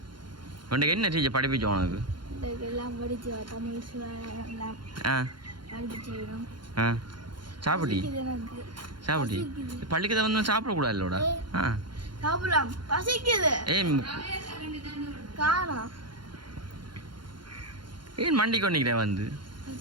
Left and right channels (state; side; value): late; left; 0.72 ms